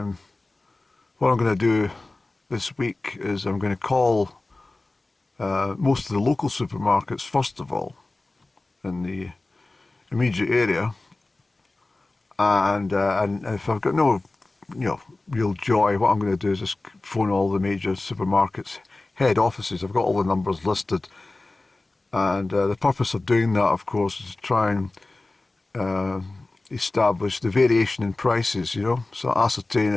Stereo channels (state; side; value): quieter; right; 3.1 dB